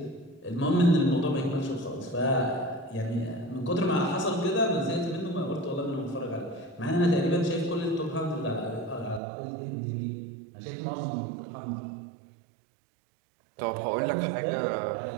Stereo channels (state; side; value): drops out; left; at 9.2 s